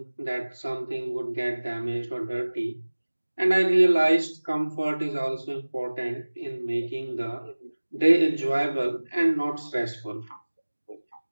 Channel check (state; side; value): inverted; both; correlation -1.00